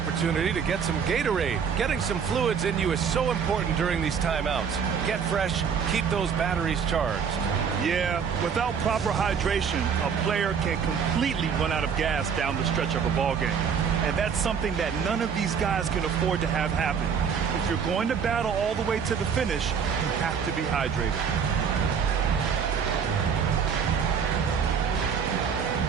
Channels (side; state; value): left; quieter; 6.8 dB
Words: to get some Gatorade. Getting some fluids in you is so important during these timeouts. Get fresh, keep those batteries charged. Yeah, without proper hydration, a player can completely run out of gas down the stretch of a ball game. And that's something that none of these guys can afford to have happen. If you're going to battle all the way to the finish, you have to be hydrated.